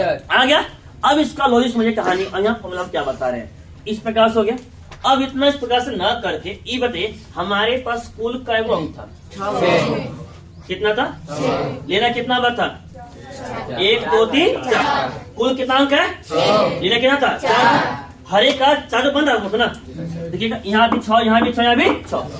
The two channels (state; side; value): identical; both; correlation 1.00